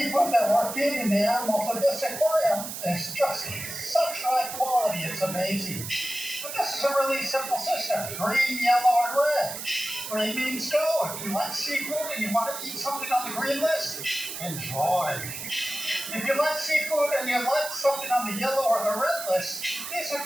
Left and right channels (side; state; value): right; noise; hiss, 8 dB below the sound